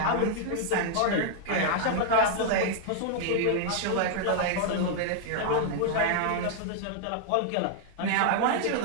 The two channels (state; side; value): different; both; correlation -0.01